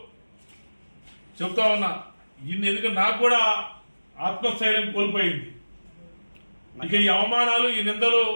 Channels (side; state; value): both; inverted; correlation -1.00